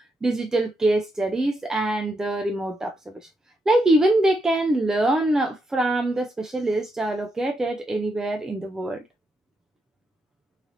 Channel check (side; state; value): both; normal; correlation 0.82